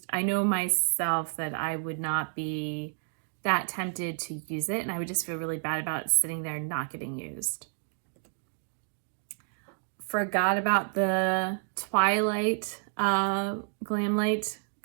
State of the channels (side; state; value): left; silent; digital silence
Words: I know myself that I would not be that tempted to use it, and I would just feel really bad about sitting there not getting used. forgot about the Twilight Glam Light